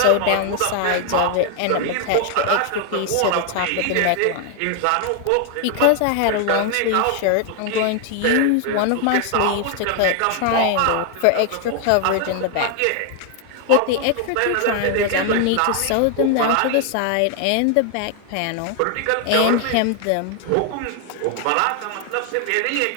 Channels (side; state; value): both; different; correlation 0.00